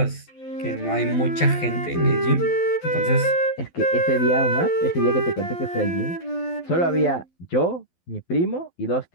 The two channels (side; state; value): right; late; 12 ms